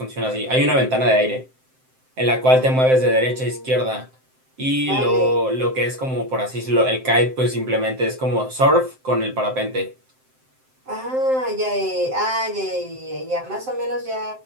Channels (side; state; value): left; late; 7.7 ms